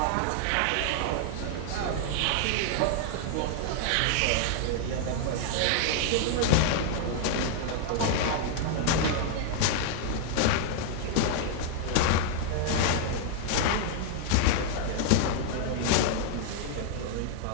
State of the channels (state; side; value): different; both; correlation 0.00